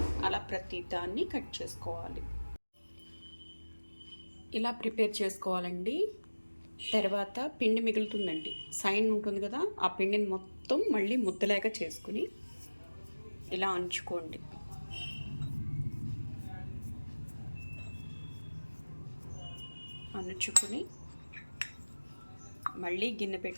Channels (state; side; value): inverted; both; correlation -1.00